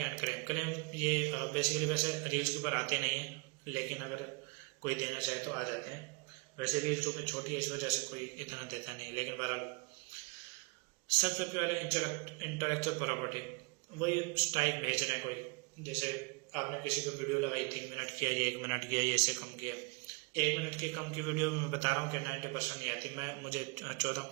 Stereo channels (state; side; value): quieter; left; 30.2 dB